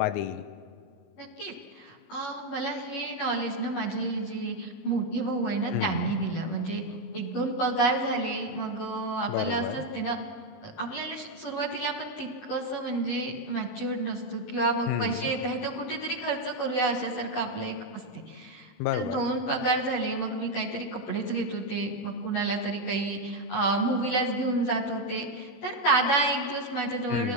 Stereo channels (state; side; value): late; right; 19 ms